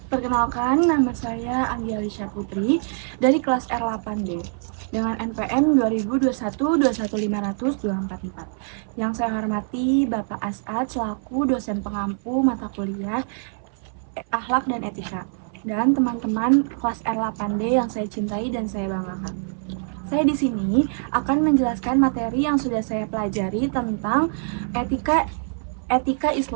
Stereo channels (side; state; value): left; silent; 61 dB below the other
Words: Perkenalkan, nama saya Anggi Alisha Putri dari kelas R8D dengan NPM 2021-21500-244. Yang saya hormati Bapak As'ad selaku dosen pengampu mata kuliah Akhlak dan Etika, dan teman-teman kelas R8D yang saya cintai dan saya banggakan. Saya di sini akan menjelaskan materi yang sudah saya pelajari tentang etika